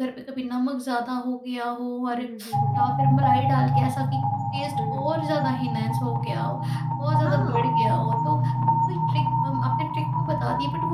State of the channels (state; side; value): identical; both; correlation 1.00